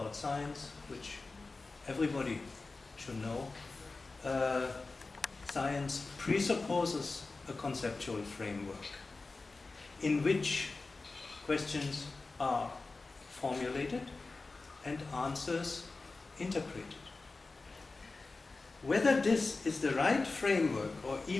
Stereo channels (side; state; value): right; quieter; 3.7 dB